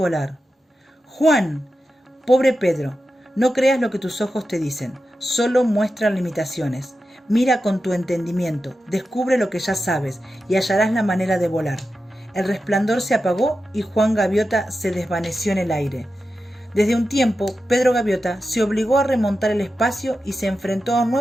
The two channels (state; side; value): normal; both; correlation 0.91